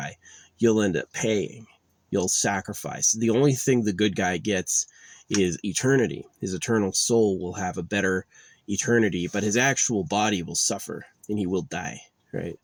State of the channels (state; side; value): identical; both; correlation 1.00